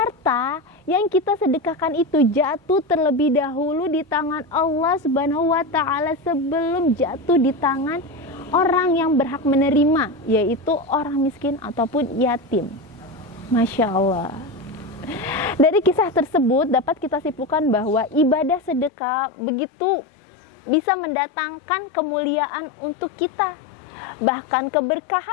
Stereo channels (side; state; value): right; drops out; at 18.9 s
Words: yang kita sedekahkan itu jatuh terlebih dahulu di tangan Allah Subhanahu wa Ta'ala sebelum jatuh di tangan orang yang berhak menerima, yaitu orang miskin ataupun yatim." Masya Allah. Dari kisah tersebut dapat kita simpulkan bahwa ibadah sedekah begitu bisa mendatangkan kemuliaan untuk kita. Bahkan